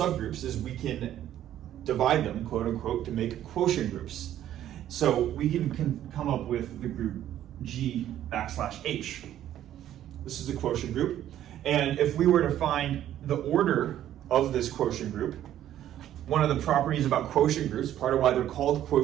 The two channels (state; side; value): quieter; left; 11.8 dB